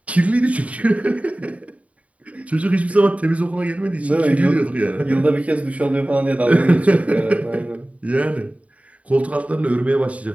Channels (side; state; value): left; late; 0.067 ms